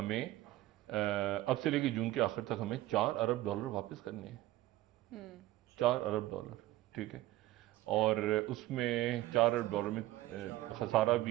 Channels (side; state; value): left; quieter; 16.5 dB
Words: अब से लेके जून के आखिर तक हमें $4 अरब वापस करने हैं। $4 अरब, ठीक है। और उसमें $4 अरब में खसारा